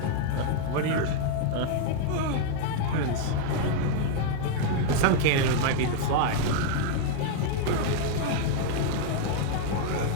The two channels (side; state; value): both; different; correlation 0.00